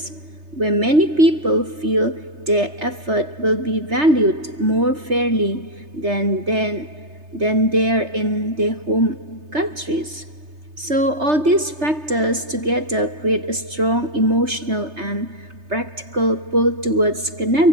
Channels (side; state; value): left; late; 3.3 ms